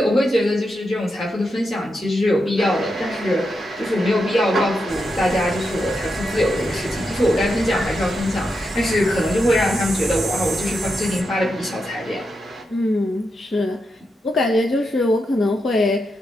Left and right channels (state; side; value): normal; both; correlation 0.85